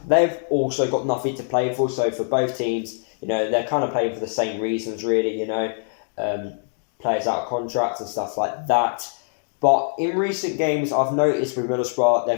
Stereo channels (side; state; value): right; silent; digital silence